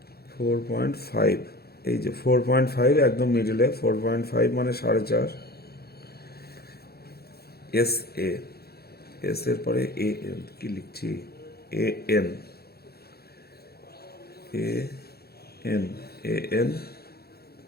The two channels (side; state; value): right; late; 0.46 ms